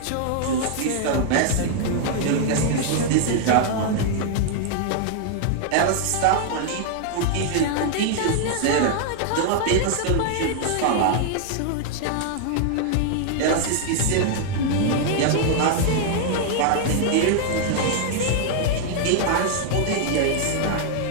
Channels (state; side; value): different; both; correlation 0.00